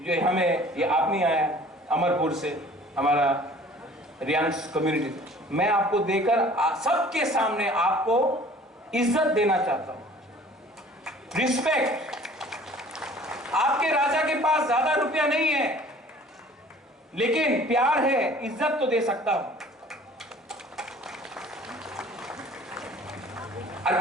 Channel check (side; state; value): both; normal; correlation 0.50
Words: हमें ये आप नहीं आया अमरपुर से, हमारा रियांस कम्युनिटी, मैं आपको देकर सबके सामने आपको इज्जत देना चाहता हूं, रिस्पेक्ट। आपके राजा के पास ज्यादा रुपया नहीं है, लेकिन प्यार है, इज्जत तो दे सकता हूं। আর